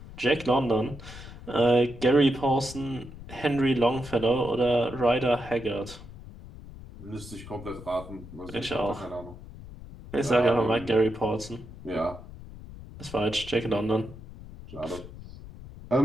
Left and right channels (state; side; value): noise; left; rumble, 15 dB below the sound